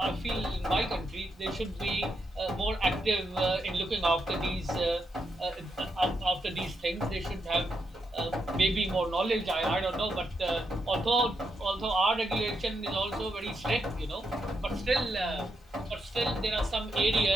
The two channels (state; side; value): normal; both; correlation 0.82